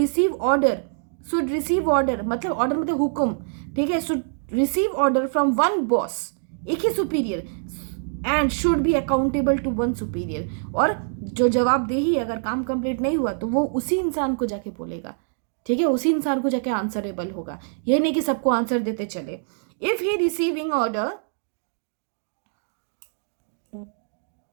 order, मतलब ऑर्डर मतलब हुक्म, ठीक है, should receive order from one boss, एक ही superior, and should be accountable to one superior, और जो जवाबदेही अगर काम कंप्लीट नहीं हुआ तो वो उसी इंसान को जाके बोलेगा, ठीक है, उसी इंसान को जाके आंसरेबल होगा, ये नहीं कि सबको आंसर देते चले। If he receiving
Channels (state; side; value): silent; left; digital silence